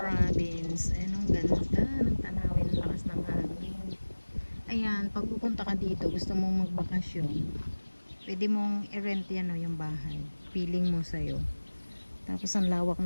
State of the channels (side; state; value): both; inverted; correlation -1.00